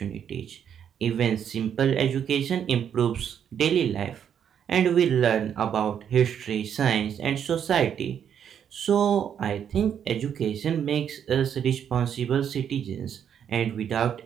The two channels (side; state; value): left; quieter; 8.6 dB